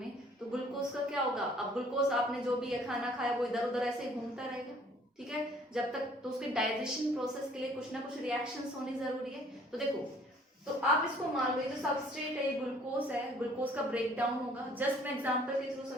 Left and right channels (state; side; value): normal; both; correlation 0.57